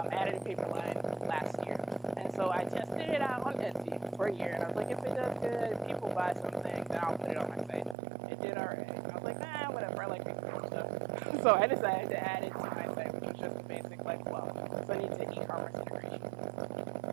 a paper line last year. And so I tested it out on Etsy for a year, and I was like, if it does good, if people buy something, then I'll put it on my site. It did alright. I was like, whatever, I like making stuff. So I decided to add it to my site, which was just a basic like blog. So I need to e-commerce integration.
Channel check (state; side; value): drops out; left; at 8.0 s